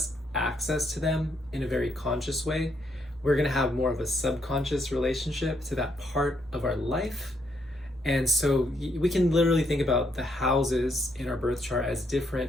access to them in a very conscious way. We're going to have more of a subconscious relationship to that part of our life. And so we can literally think about the houses in our birth chart as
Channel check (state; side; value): normal; both; correlation 0.74